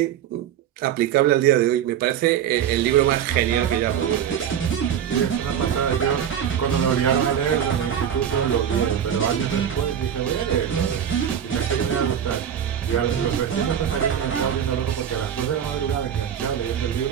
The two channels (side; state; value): left; quieter; 9.2 dB